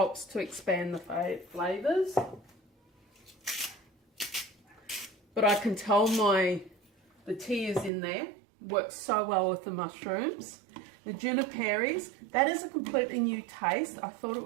to expand the flavours. But I can tell the tea is in there, works so well with the mushrooms. The juniperis, that is a completely new taste. I thought it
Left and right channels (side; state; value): left; drops out; at 7.9 s